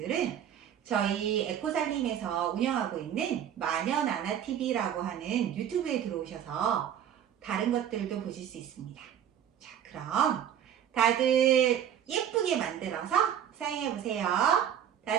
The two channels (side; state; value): left; quieter; 9.6 dB